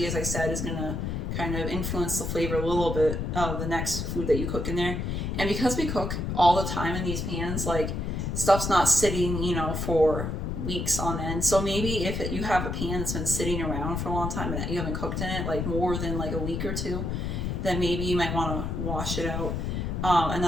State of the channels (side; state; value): left; noise; rumble, 2 dB below the sound